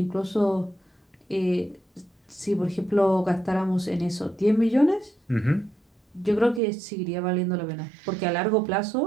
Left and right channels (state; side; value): drops out; left; at 6.6 s